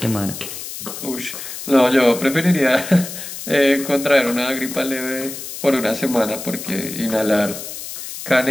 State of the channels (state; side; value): noise; left; hiss, 9 dB below the sound